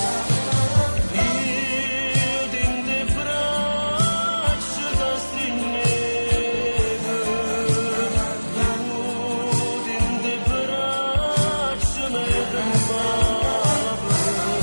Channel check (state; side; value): inverted; both; correlation -1.00